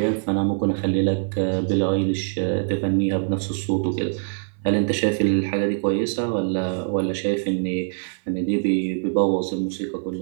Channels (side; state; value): left; silent; 63 dB below the other